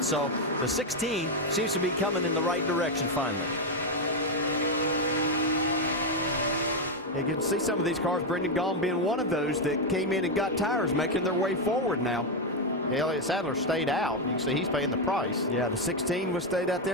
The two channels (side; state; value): both; normal; correlation 0.04